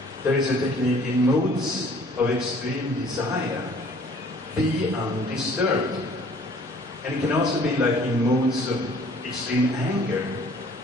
There is a technique in moods of extreme desire. Be undisturbed. And it can also be like in moods of extreme anger.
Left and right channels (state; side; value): normal; both; correlation 0.54